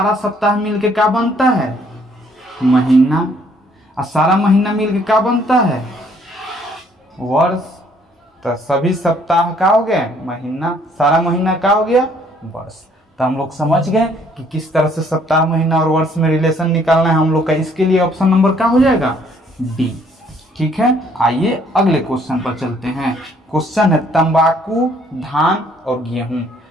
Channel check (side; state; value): both; normal; correlation 0.63